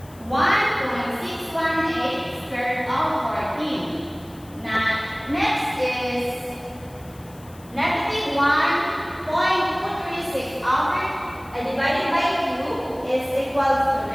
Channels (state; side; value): noise; left; hiss, 24 dB below the sound